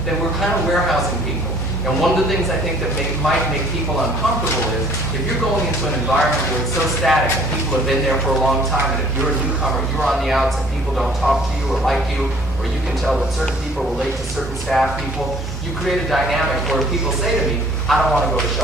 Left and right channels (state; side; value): normal; both; correlation 0.56